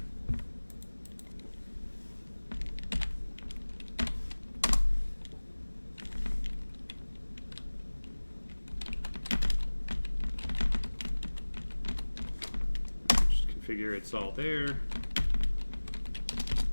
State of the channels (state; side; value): inverted; both; correlation -1.00